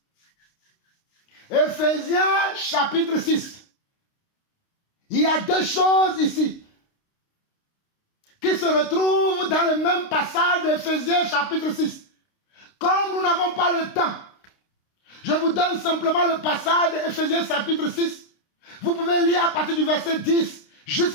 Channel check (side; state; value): right; late; 29 ms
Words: Éphésiens chapitre 6. Il y a deux choses ici qui se retrouvent dans le même passage d'Éphésiens chapitre 6. Comme nous n'avons pas le temps, je vous donne simplement le passage d'Éphésiens chapitre 6. Vous pouvez lire à partir du verset 10